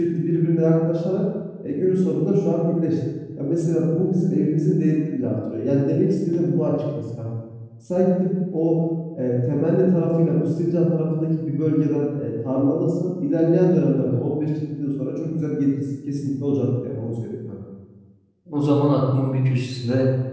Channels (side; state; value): both; identical; correlation 1.00